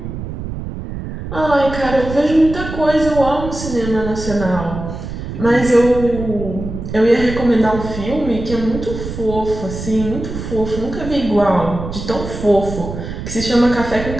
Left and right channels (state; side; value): noise; right; rumble, 8 dB below the sound